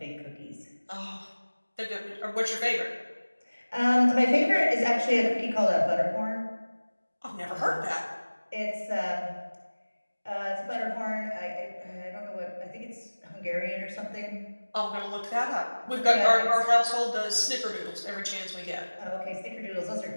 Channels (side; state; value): both; inverted; correlation -1.00